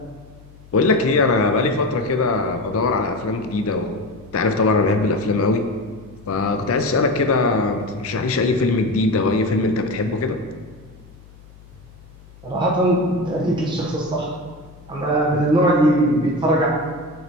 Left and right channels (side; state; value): left; noise; hum, 23 dB below the sound